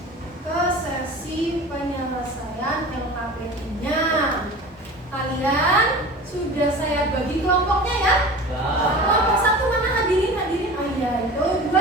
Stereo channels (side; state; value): both; normal; correlation 0.37